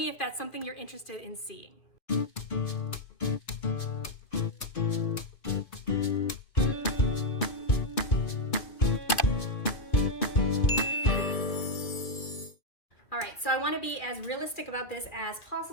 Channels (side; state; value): right; late; 2.5 ms